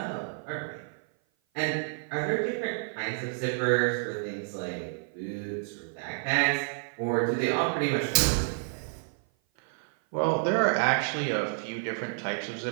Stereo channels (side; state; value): left; silent; 55 dB below the other